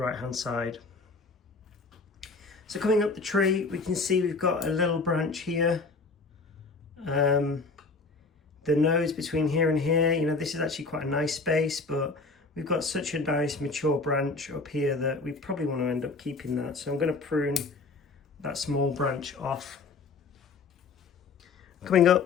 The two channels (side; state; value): right; quieter; 4.0 dB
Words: hand side. So coming up the tree, we can see we've got a little branch here. The nose between here and here, this is actually quite a nice space, but we've got such a nice mature branch up here that we probably want to end up keeping that. So I'm going to prune that small branch off. Coming